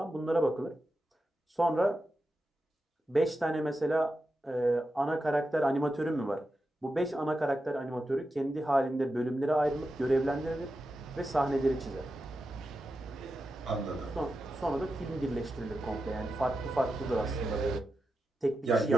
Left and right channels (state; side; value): normal; both; correlation 0.89